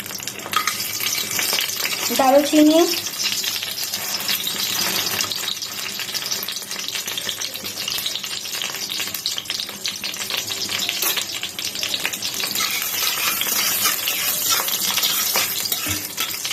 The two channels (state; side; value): identical; both; correlation 1.00